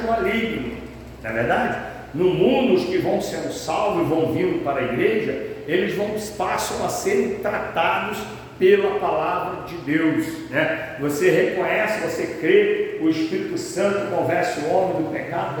maligno, não é verdade? No mundo, os que vão sendo salvos e vão vindo para a igreja, eles passam a serem tratados pela palavra de Deus, né? Você reconhece, você crê, o Espírito Santo convence o homem do pecado,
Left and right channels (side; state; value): both; identical; correlation 1.00